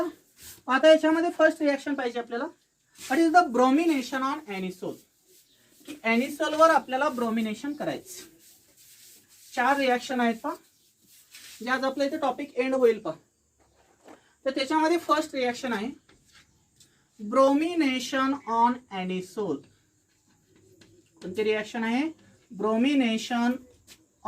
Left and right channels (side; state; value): both; identical; correlation 1.00